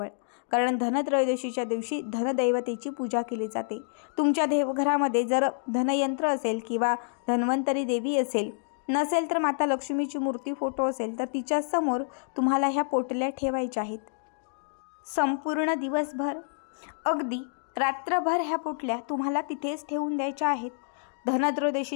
कारण धनत्रयोदशीच्या दिवशी धनदैवतेची पूजा केली जाते। तुमच्या देवघरामध्ये जर धनयंत्र असेल किंवा धन्वंतरी देवी असेल, नसेल तर माता लक्ष्मीची मूर्ती, फोटो असेल तर तिच्या समोर तुम्हाला ह्या पोटल्या ठेवायच्या आहेत। संपूर्ण दिवसभर, अगदी रात्रभर ह्या पोटल्या तुम्हाला तिथेच ठेवून द्यायच्या आहेत।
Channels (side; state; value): right; silent; digital silence